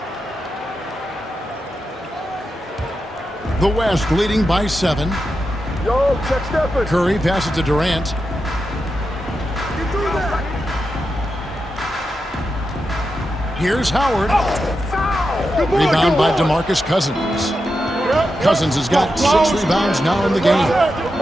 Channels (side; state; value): both; normal; correlation 0.88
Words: The West leading by 7. Yo, check Stephen. Curry passes to Durant. Here's Howard. Rebound by DeMarcus Cousins. Cousins has got 6 rebounds now in the game.